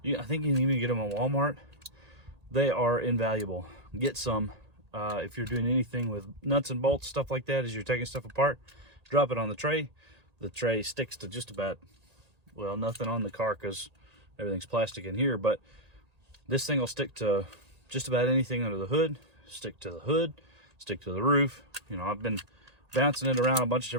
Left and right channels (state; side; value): late; left; 1.8 ms